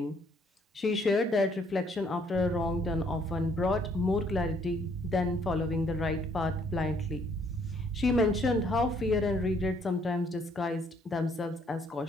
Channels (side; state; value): both; normal; correlation 0.66